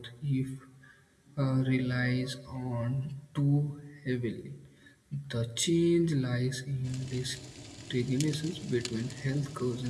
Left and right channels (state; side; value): identical; both; correlation 1.00